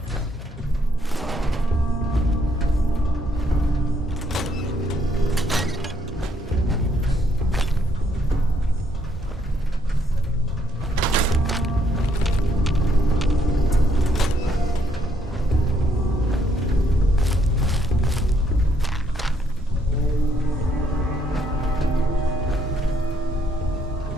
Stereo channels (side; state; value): both; normal; correlation 0.71